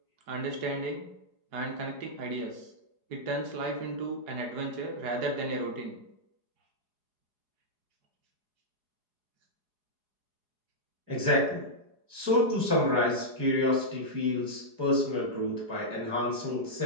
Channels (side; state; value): left; late; 4.8 ms